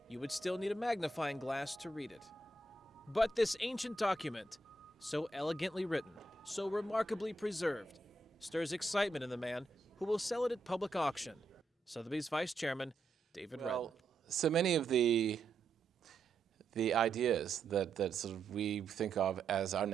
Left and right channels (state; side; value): quieter; left; 3.1 dB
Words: you would still need a magnifying glass to read it. But this ancient document, so elegantly written, so remarkably preserved, stirs excitement in the man who will sell it at public auction. Sotheby's Vice Chairman, David Redden. So many of the ideas that sort of we think of as our